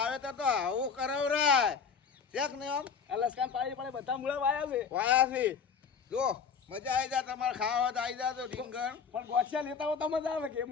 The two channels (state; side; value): quieter; right; 6.1 dB